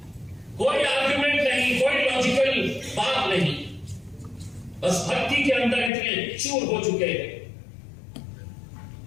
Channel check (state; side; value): drops out; right; at 5.9 s